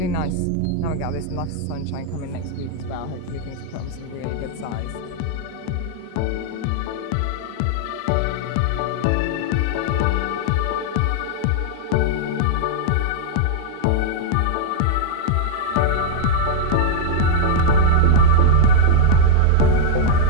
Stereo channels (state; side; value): different; both; correlation -0.01